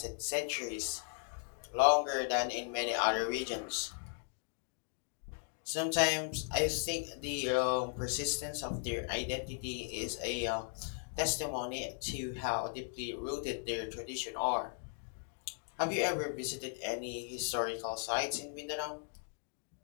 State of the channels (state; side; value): silent; right; 53 dB below the other